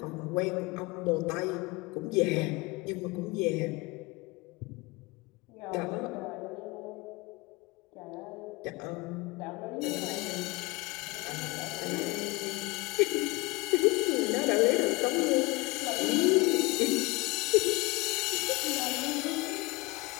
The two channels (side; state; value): right; quieter; 24.3 dB